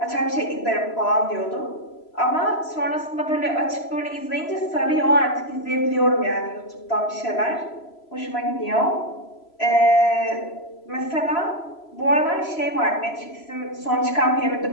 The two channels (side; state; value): right; late; 3.0 ms